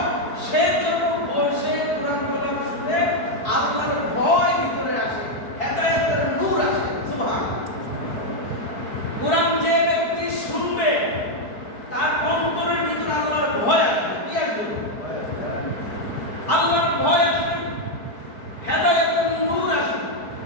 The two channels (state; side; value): late; right; 4.6 ms